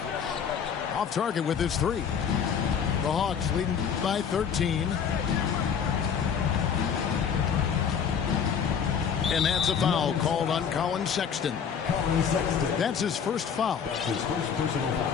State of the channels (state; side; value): quieter; right; 7.3 dB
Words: Off target with his 3. The Hawks leading by 13. And that's a foul called on Colin Sexton. That's his first foul. That's his first personal